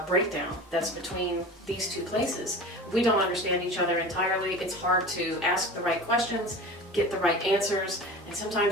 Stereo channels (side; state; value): both; normal; correlation 0.35